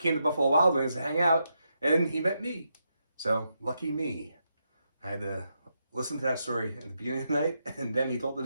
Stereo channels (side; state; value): both; inverted; correlation -0.83